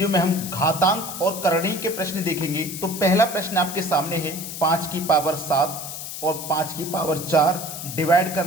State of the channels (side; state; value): left; noise; hiss, 8 dB below the sound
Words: में हम घातांक और करणीय के प्रश्न देखेंगे। तो पहला प्रश्न आपके सामने है 5 की पावर 7 और 5 की पावर 4 डिवाइड